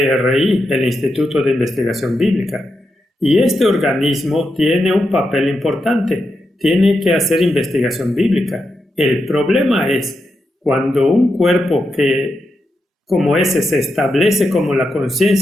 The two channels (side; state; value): both; normal; correlation 0.86